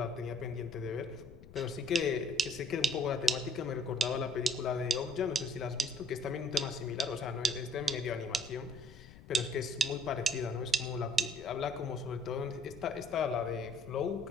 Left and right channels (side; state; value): left; noise; rumble, 18 dB below the sound